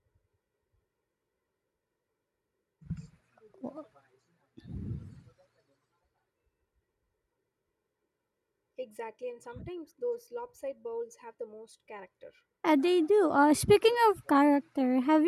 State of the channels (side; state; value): both; identical; correlation 1.00